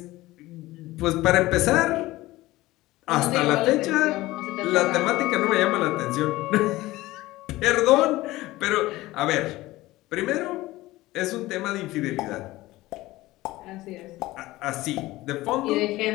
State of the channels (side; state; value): right; quieter; 18.2 dB